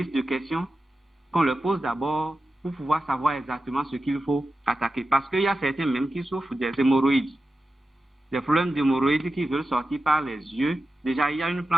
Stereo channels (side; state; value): both; normal; correlation 0.92